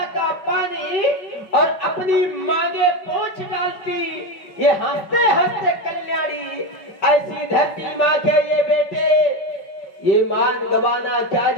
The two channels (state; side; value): late; right; 5.0 ms